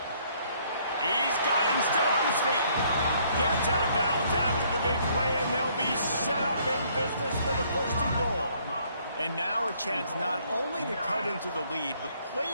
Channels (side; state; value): both; inverted; correlation -0.65